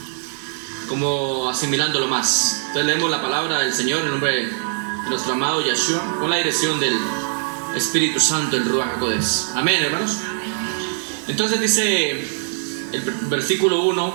como asimilándolo más. Entonces leemos la palabra del Señor en nombre de nuestro amado Yeshua, con la dirección del Espíritu Santo, el Ruach HaKodesh. Amén, hermanos. Entonces dice el versículo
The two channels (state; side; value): silent; left; digital silence